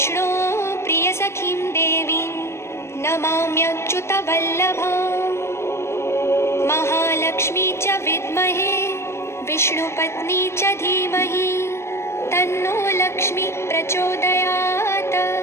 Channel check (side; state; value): right; late; 0.13 ms